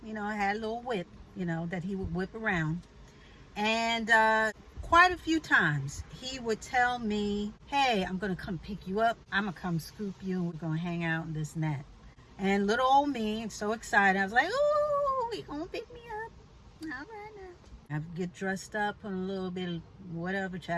you know, had a little whip, you know, that he would whip around. And quite a few times he would tell me, hey, I'm going to come pick you up. I'm going to come scoop you. We're going to hang out and this and that. And little old me, so excited. I was like, ooh, he going to pick me up. All right now. I get dressed up, put a little bit of whatever,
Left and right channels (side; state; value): both; identical; correlation 1.00